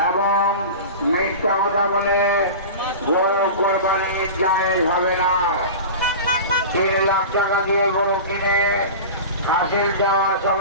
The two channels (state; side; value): inverted; both; correlation -0.31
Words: এবং মিথ্যা কথা বলে গরু কোরবানি জায়েজ হবে না। 3 লাখ টাকা দিয়ে গরু কিনে হাসিল দেওয়ার